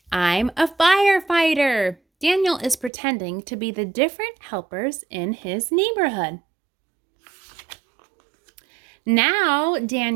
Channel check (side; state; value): left; drops out; at 2.9 s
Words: I'm a firefighter. Daniel is pretending to be the different helpers in his neighborhood. Now